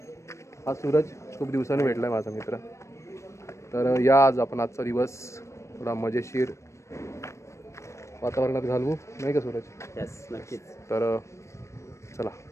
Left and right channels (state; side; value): late; right; 0.14 ms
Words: हा सूरज, खूप दिवसांनी भेटला आहे माझा मित्र. तर या आज आपण आजचा दिवस थोडा मजेशीर वातावरणात घालवू, नाही का सूरज? यस, नक्कीच. तर चला,